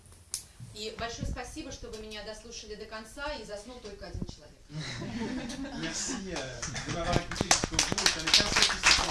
И большое спасибо, что вы меня дослушали до конца, и заснул только один человек. Merci de m'avoir écouté jusqu'au bout. Ça n'est qu'un seul qui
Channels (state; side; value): identical; both; correlation 1.00